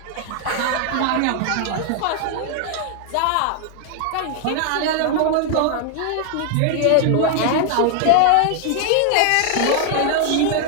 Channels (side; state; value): both; different; correlation 0.00